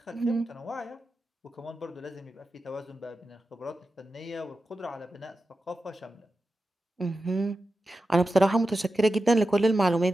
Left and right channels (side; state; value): both; normal; correlation 0.91